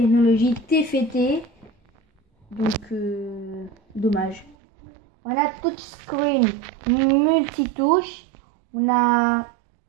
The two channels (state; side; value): drops out; left; at 4.5 s